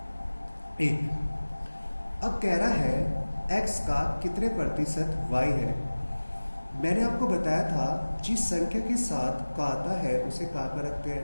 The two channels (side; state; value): both; inverted; correlation -1.00